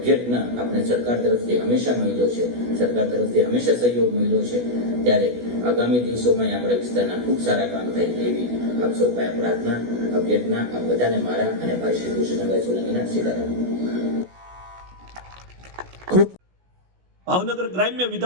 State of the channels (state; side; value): late; left; 16 ms